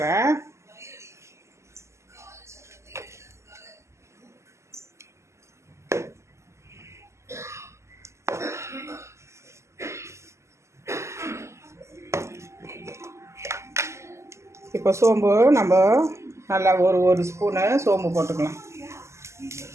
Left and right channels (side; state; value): left; late; 0.13 ms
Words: இப்போ சோம்பு நம்ம நல்லா ஒரு ஸ்பூனு சோம்பு போட்டுக்கலாம்.